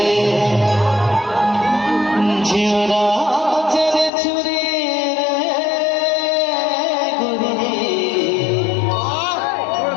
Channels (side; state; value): right; drops out; at 4.1 s